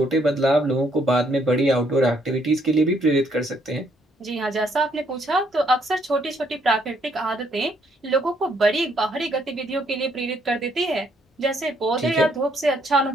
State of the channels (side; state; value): both; normal; correlation 0.70